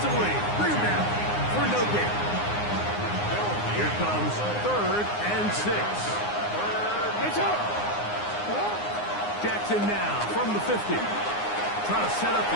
Bring him down for no gain. Here comes 3rd and 6. Jackson now from the 50. Trying to set up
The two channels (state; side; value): late; right; 9.7 ms